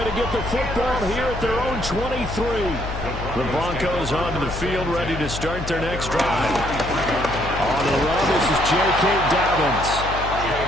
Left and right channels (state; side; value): noise; left; hum, 8 dB below the sound